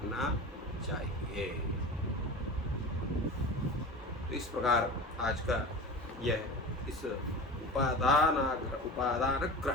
चाहिए। तो इस प्रकार आज का यह इस उपादान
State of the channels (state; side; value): normal; both; correlation 0.32